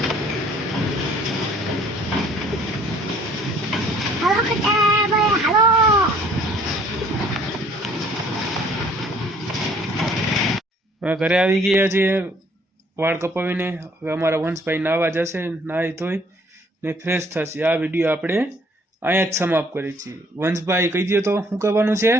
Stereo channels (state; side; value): normal; both; correlation 0.59